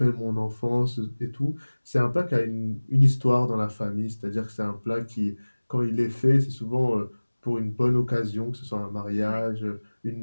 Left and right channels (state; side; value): inverted; both; correlation -1.00